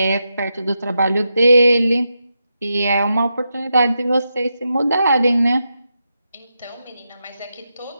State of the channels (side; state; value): both; inverted; correlation -0.86